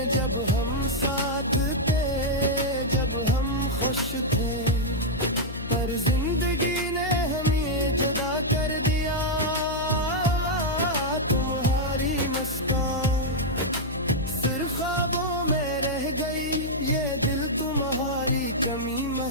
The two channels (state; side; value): noise; left; hum, 10 dB below the sound